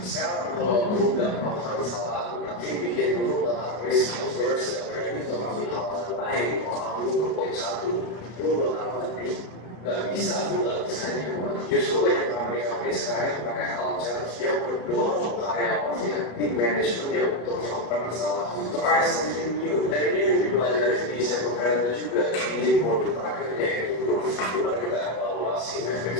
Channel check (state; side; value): late; right; 33 ms